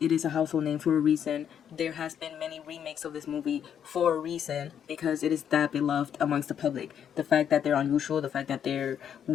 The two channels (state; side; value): quieter; right; 8.7 dB